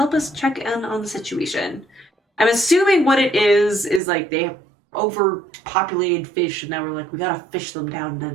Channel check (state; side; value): drops out; left; at 4.0 s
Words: us check in on the situation? I'm assuming what it is like they have overpopulated fish, and now we're like, we gotta fish them down